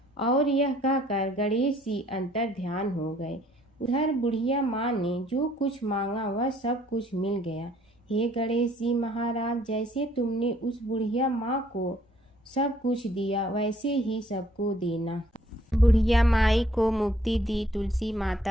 और यह कहकर गणेश जी अंतर ध्यान हो गए। उधर बुढ़िया माँ ने जो कुछ मांगा वह सब कुछ मिल गया। हे गणेश जी महाराज, जैसे तुमने उस बुढ़िया माँ को सब कुछ दिया वैसे ही सबको देना। बुढ़िया माई को मुक्ति दी तुलसी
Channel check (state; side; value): normal; both; correlation 0.62